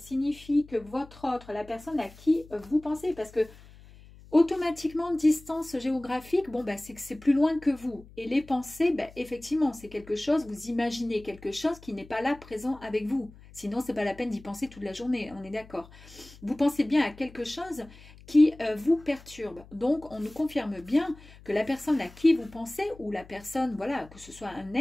que votre autre, la personne à qui vous pensez, parce que automatiquement, distance géographique, bon, bah, c'est que c'est plus loin que vous. Et les pensées, bah, effectivement, c'est quelque chose, vous imaginez quelque chose qui n'est pas là présent avec vous. Sinon, c'est pas la peine d'y penser toute la journée, on est d'accord. Vous pensez bien à quelque chose qui vous perturbe. Donc, on nous confirme bien que la personne à qui vous pensez, ou la personne, voilà, que ce soit un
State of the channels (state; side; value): noise; left; hum, 21 dB below the sound